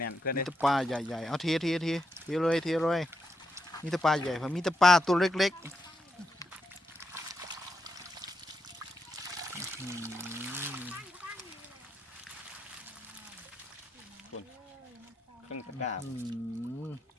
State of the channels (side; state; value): both; normal; correlation 0.82